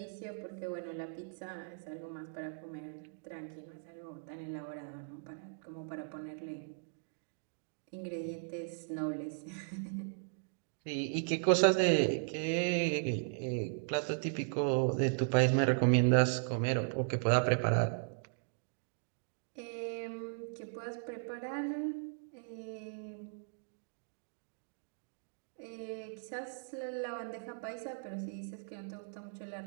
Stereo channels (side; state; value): left; silent; digital silence